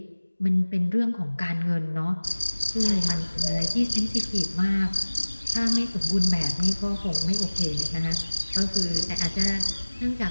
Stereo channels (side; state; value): both; inverted; correlation -1.00